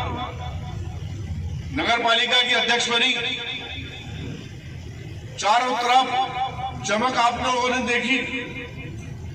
नगर पालिका की अध्यक्ष बनी, चारों तरफ चमक आप लोगों ने देखी।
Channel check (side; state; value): both; identical; correlation 1.00